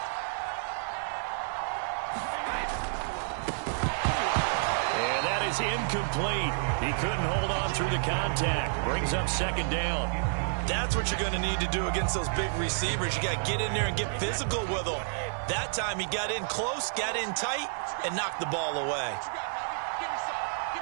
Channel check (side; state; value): left; silent; digital silence